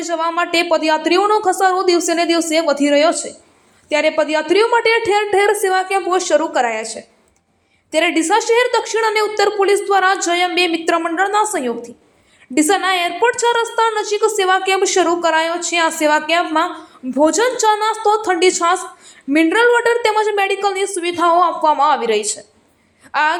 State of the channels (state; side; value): identical; both; correlation 1.00